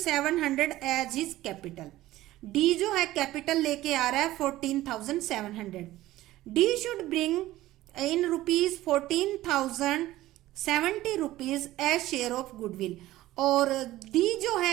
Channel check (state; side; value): quieter; left; 16.0 dB